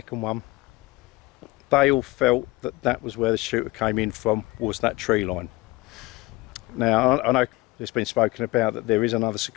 one, they all felt that that was where the shooter came in from, was that tree line. Now I know it's been spoken about that there is another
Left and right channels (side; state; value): right; quieter; 21.7 dB